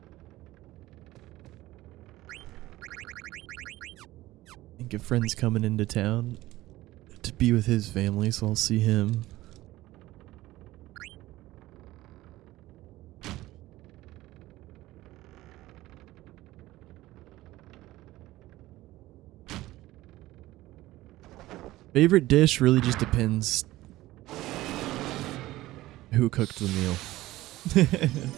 I think a friend's coming into town to be with his family, so I'll see him. Favorite dish really just depends who cooked the meal.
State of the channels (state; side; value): quieter; left; 17.0 dB